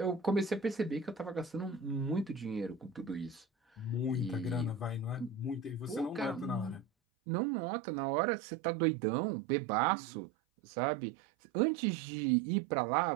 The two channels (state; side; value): drops out; left; at 6.9 s